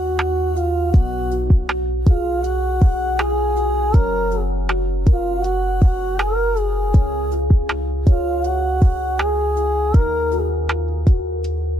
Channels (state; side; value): normal; both; correlation 0.80